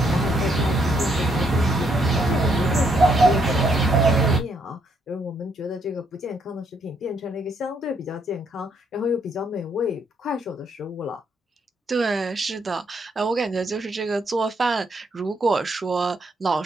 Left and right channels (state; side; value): normal; both; correlation 0.73